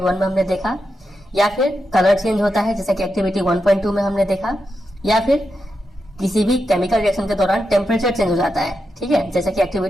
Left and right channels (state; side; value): normal; both; correlation 0.87